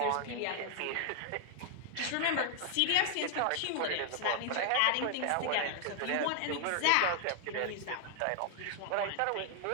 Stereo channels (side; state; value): both; different; correlation -0.01